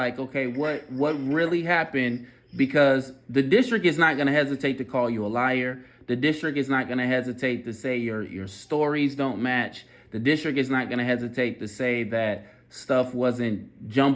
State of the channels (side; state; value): both; identical; correlation 1.00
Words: okay, what really happened? Because the district is not going to hesitate to call you a liar. The district is not going to hesitate to say your stories don't match. The district is not going to hesitate to say that stuff wasn't